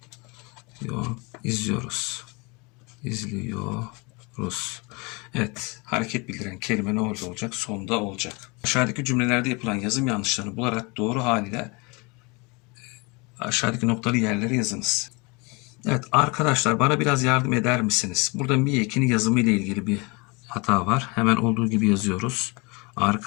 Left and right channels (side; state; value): right; quieter; 28.4 dB